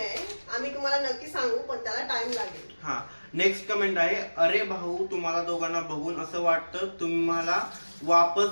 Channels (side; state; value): both; inverted; correlation -1.00